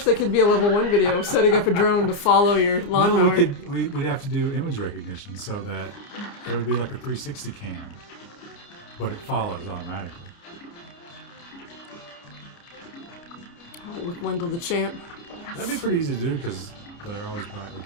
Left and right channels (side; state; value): right; late; 29 ms